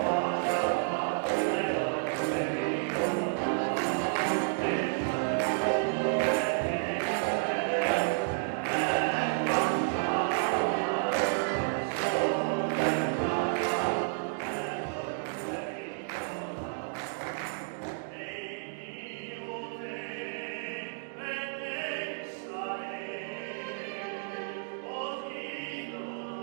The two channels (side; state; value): left; silent; digital silence